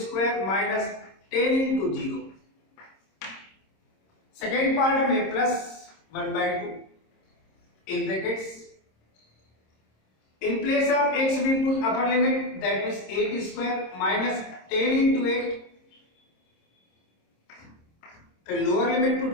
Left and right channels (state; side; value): late; right; 26 ms